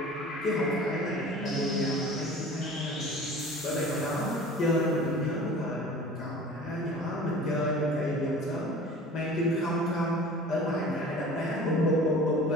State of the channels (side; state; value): both; normal; correlation 0.42